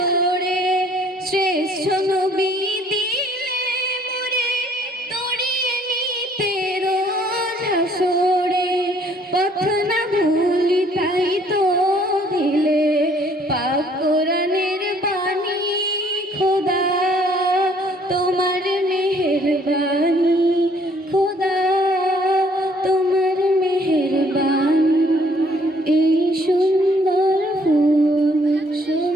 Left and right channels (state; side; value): normal; both; correlation 0.62